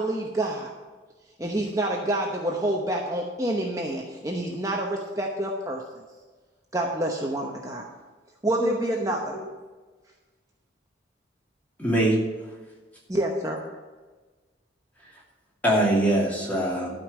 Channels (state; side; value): normal; both; correlation 0.52